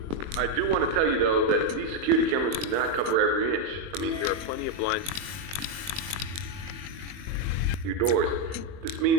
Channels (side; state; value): left; late; 21 ms